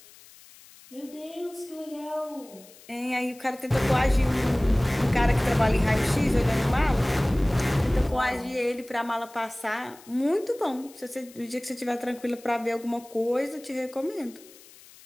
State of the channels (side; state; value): left; noise; hiss, 23 dB below the sound